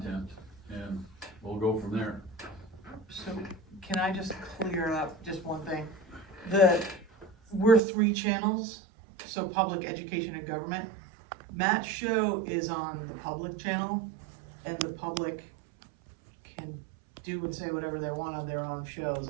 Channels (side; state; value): left; drops out; at 7.8 s